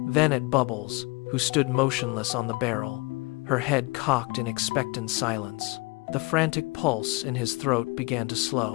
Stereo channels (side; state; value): right; quieter; 25.6 dB